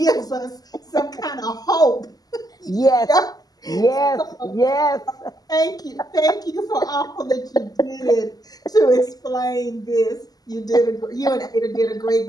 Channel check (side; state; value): right; late; 0.18 ms